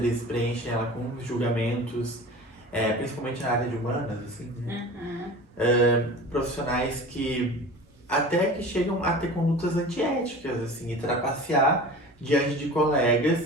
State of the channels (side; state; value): both; normal; correlation 0.37